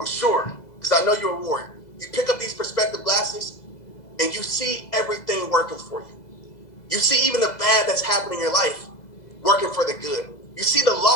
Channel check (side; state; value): right; late; 2.0 ms